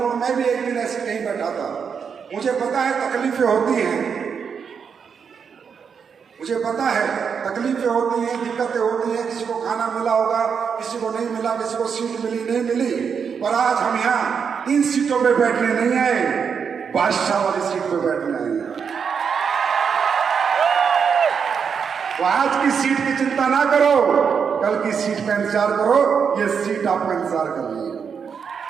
और मैं भी एक दिन ऐसे कहीं बैठा था, मुझे पता है तकलीफें होती हैं, मुझे पता है तकलीफें होती हैं, दिक्कतें होती हैं। किसी को खाना मिला होगा, किसी को नहीं मिला, किसी को सीट मिली नहीं मिली। पर आज हम यहाँ इन सीटों पे बैठने नहीं आए, बादशाह वाली सीट पे बैठने आए हैं। तो आज की सीट की चिंता ना करो, कल की सीट का इंतजार करो। ये सीट आपका इंतजार कर रही है।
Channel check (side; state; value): left; quieter; 6.6 dB